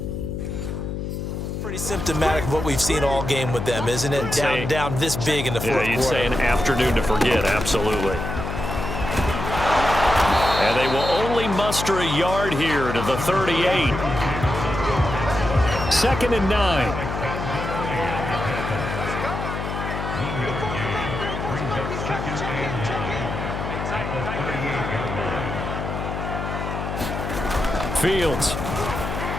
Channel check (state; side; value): noise; left; hum, 5 dB below the sound